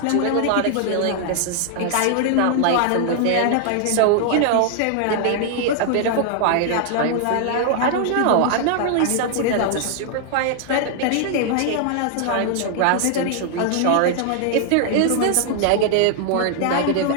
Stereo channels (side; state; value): both; different; correlation 0.00